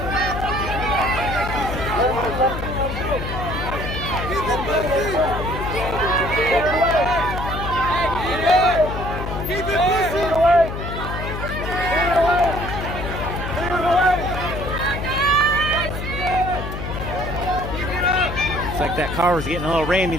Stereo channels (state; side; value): noise; left; hum, 6 dB below the sound